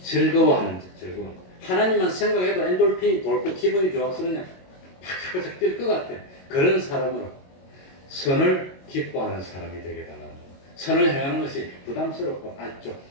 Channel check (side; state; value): right; late; 22 ms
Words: 즐거워하는 자, 하나님만 생각해도 엔돌핀이 돌고 기분이 좋아서 그냥 팍팍 뛸 것 같아. 그런 사람으로 선을 기뻐하는 사람이 되게 달라는 거예요. 선을 행하는 것이 부담스럽고 좀